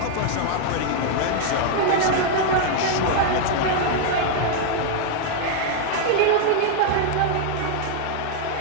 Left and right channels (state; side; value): different; both; correlation 0.00